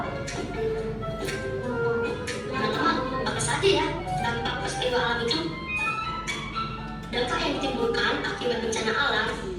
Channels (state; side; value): identical; both; correlation 1.00